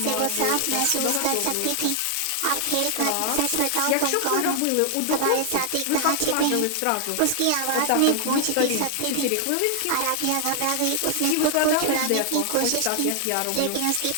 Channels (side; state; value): both; different; correlation 0.00